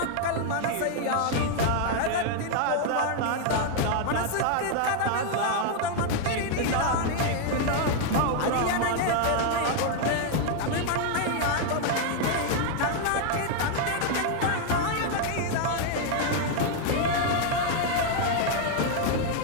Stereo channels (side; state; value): both; different; correlation 0.00